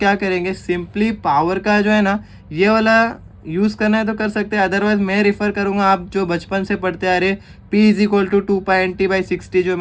करेंगे, सिंपली पावर का जो है ना ये वाला यूज़ करना है तो कर सकते हैं, अदरवाइज मैं रिफ़र करूँगा आप जो बचपन से पढ़ते आ रहे P is equal to 2π NT/60 जो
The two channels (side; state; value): both; identical; correlation 1.00